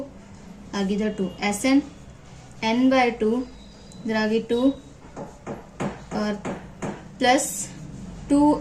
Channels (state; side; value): identical; both; correlation 1.00